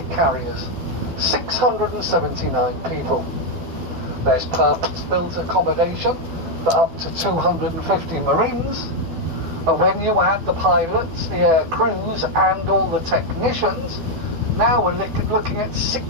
carriers. 679 people. There's purpose-built accommodation for up to 250 Marines, and when you add the pilots, the air crews, and all the technicians, now we're looking at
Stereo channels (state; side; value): late; left; 12 ms